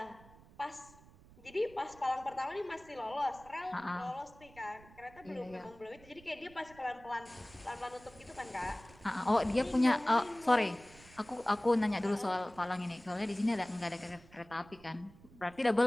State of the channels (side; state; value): right; noise; rumble, 23 dB below the sound